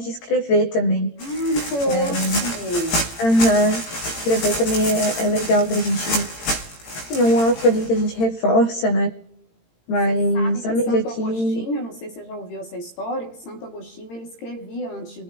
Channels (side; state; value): right; late; 18 ms